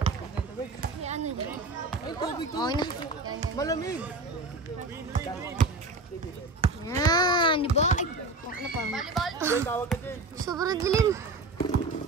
Ay, tubig to. Okay na. Malamig. Yan, di ba? Ay, ano pa? Tawag ka din. Sobrang dilim.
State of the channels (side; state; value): left; quieter; 3.2 dB